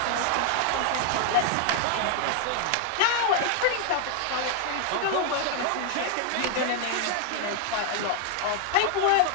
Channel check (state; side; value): different; both; correlation 0.00